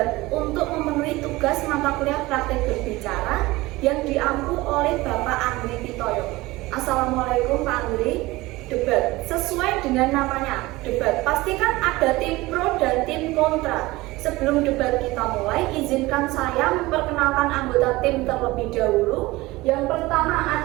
untuk memenuhi tugas mata kuliah praktek berbicara yang diampu oleh Bapak Andri Pitoyo. Assalamualaikum Pak Andri. Debat, sesuai dengan namanya, debat. Pastikan ada tim pro dan tim kontra. Sebelum debat kita mulai, izinkan saya memperkenalkan anggota tim terlebih dahulu. Yang pertama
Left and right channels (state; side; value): quieter; left; 20.1 dB